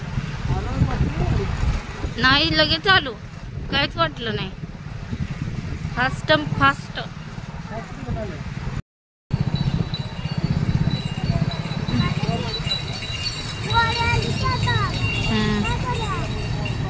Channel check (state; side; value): identical; both; correlation 1.00